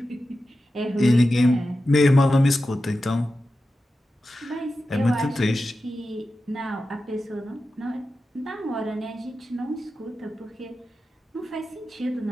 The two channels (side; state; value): both; normal; correlation 0.92